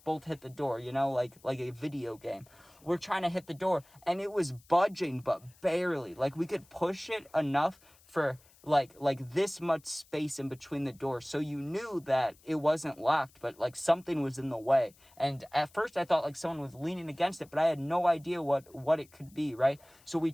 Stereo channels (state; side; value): noise; left; hiss, 28 dB below the sound